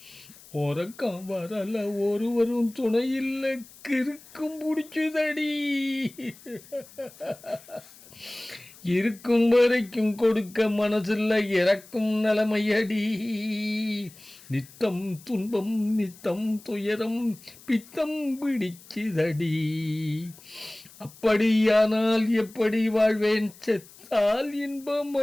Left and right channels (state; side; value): noise; left; hiss, 22 dB below the sound